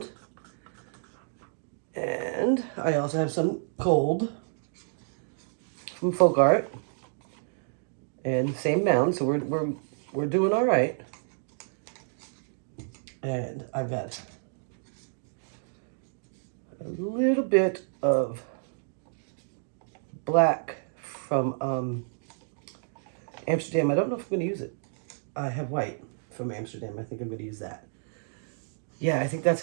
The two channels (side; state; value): left; silent; digital silence